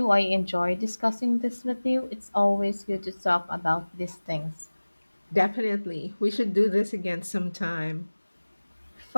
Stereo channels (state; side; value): inverted; both; correlation -1.00